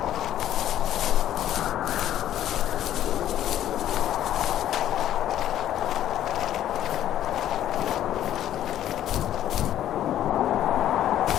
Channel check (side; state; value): right; quieter; 11.8 dB